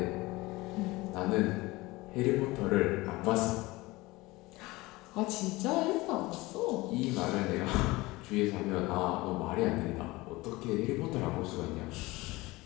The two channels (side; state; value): right; quieter; 21.0 dB